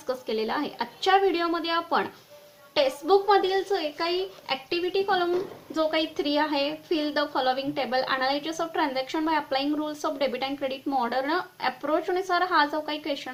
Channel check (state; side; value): identical; both; correlation 1.00